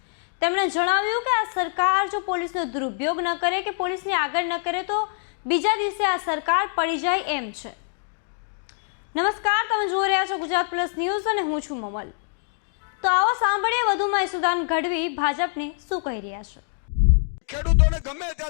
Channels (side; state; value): right; silent; digital silence